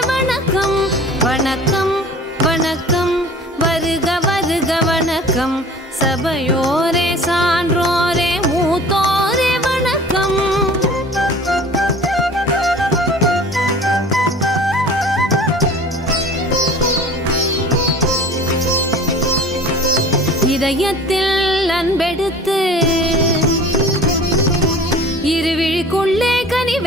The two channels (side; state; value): both; normal; correlation 0.44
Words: வணக்கம் வணக்கம் வணக்கம் வருக வருக வணக்கம் சபையோரே சான்றோரே மூத்தோரே வணக்கம். இதயத்தில் அன்பெடுத்து இருவிழிக்குள்ளே